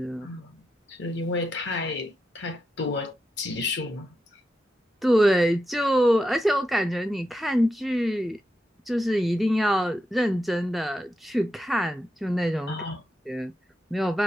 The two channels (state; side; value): normal; both; correlation 0.87